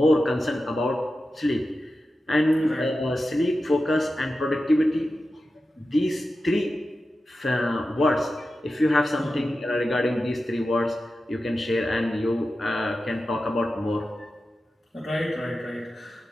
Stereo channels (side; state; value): both; normal; correlation 0.92